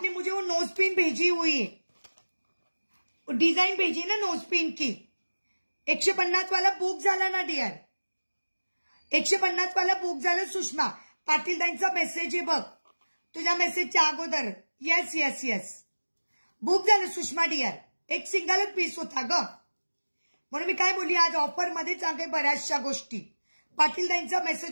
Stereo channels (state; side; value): inverted; both; correlation -1.00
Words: मुझे वो नोज पिन भेजी हुई है, डिझाईन भेजी ना नोज पिन की. 150 वाला बुक झाला ना डिअर, 150 वाला बुक झालं. सुषमा पाटीलदांचा मेसेज आहे बघ, तुझ्या मेसेजच्या अगोदर. येस येस येस, बुक झालं सुषमा डिअर. एक सिंगलच पीस होता ग, म्हणून मी काय बोलली, आज ऑफर मध्येच आहे बऱ्याचशा गोष्टी. पाटीलदांचा